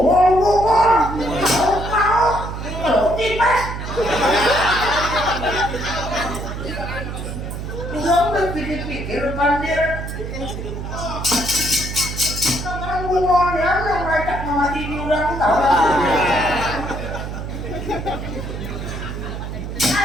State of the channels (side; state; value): right; noise; hum, 7 dB below the sound